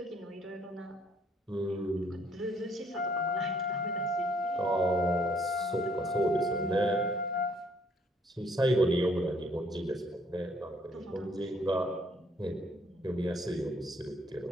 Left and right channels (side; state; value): both; normal; correlation 0.65